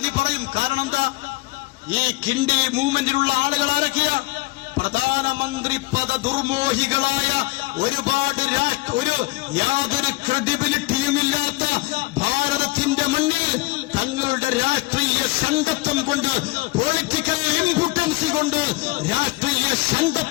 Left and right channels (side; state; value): right; quieter; 22.6 dB